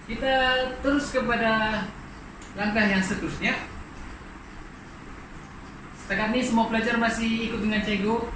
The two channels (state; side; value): identical; both; correlation 1.00